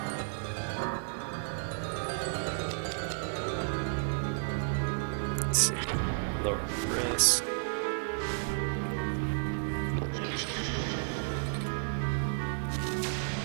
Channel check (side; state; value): left; silent; 55 dB below the other